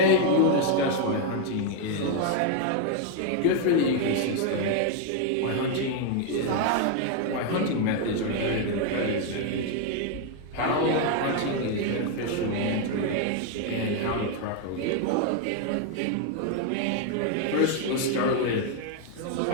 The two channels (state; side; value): different; both; correlation 0.01